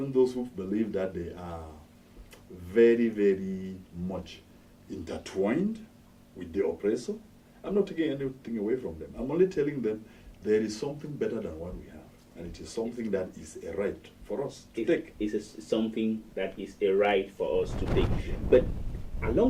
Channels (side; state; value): both; identical; correlation 1.00